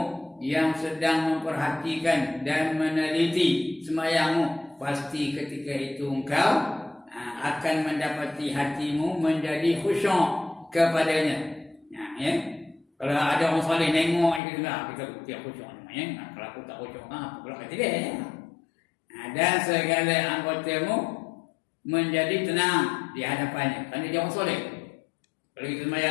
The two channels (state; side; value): drops out; right; at 14.4 s